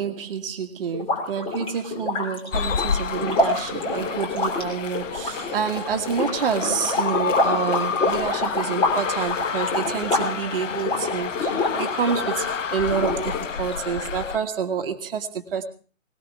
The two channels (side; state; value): both; normal; correlation 0.04